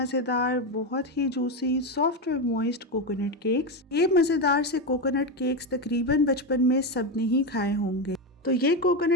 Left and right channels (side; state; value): both; normal; correlation 0.12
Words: बहुत ही जूसी, सॉफ्ट और मॉइस्ट कोकोनट केक्स। ये मज़ेदार से कोकोनट केक्स तकरीबन बचपन में सबने ही खाए होंगे। तो ये